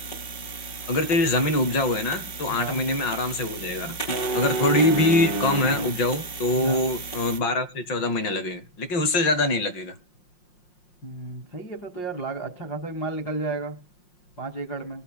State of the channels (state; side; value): late; right; 5.6 ms